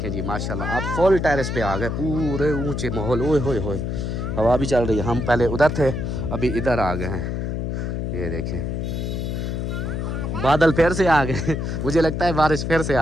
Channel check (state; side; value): noise; left; hum, 2 dB below the sound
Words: जी माशाल्लाह अब फुल टेरेस पे आ गए, पूरे ऊंचे माहौल। ओए होए होए हवा भी चल रही है। हम पहले उधर थे अभी इधर आ गए हैं। ये देखें बादल फिर से आ गए। मुझे लगता है बारिश फिर से